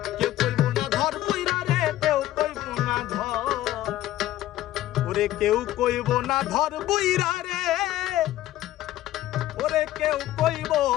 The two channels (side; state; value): right; quieter; 14.5 dB